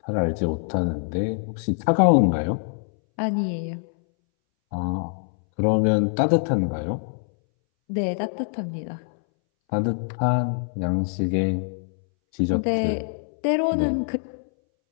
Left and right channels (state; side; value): silent; right; 61 dB below the other